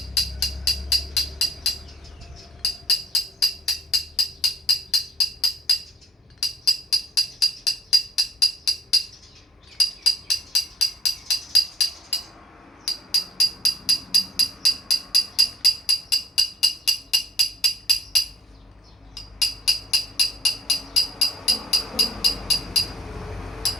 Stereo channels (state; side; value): normal; both; correlation 0.65